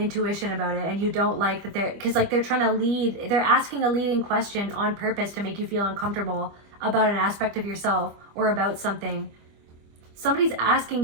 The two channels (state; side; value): late; left; 25 ms